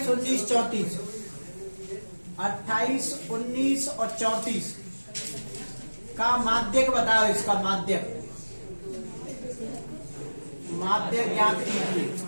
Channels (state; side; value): inverted; both; correlation -1.00